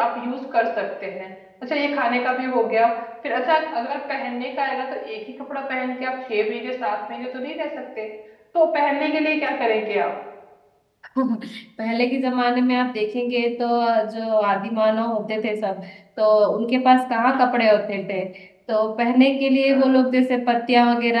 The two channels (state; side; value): identical; both; correlation 1.00